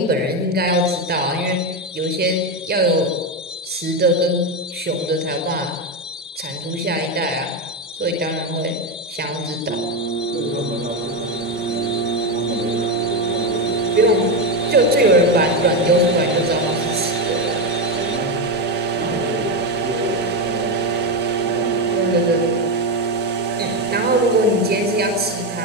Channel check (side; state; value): both; normal; correlation 0.10